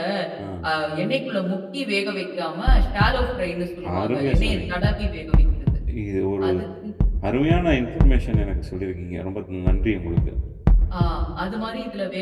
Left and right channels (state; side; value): identical; both; correlation 1.00